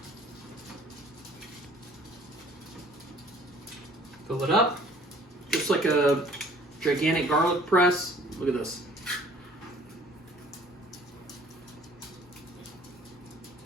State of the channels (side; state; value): both; normal; correlation 0.54